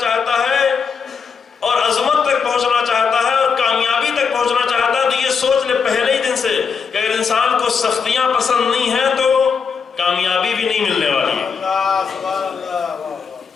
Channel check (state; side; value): quieter; right; 5.9 dB